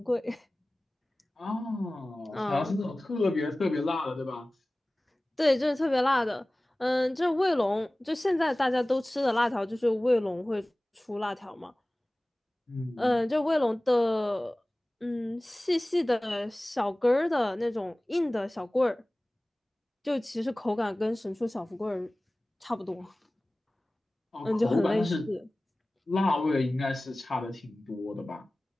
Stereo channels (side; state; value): both; normal; correlation 0.98